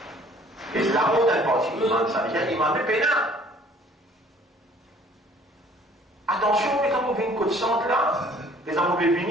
Et c'est la mode d'un parti, ça veut dire qu'il m'a mis pénal. Attention, mais quand on vient une côte centre là, les hommes peuvent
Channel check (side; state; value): both; normal; correlation 0.55